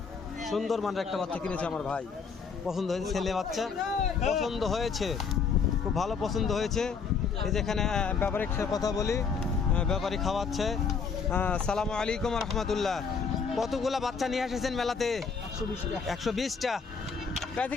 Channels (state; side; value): quieter; right; 5.6 dB